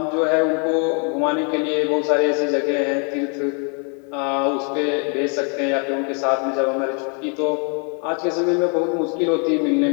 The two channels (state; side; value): quieter; right; 38.7 dB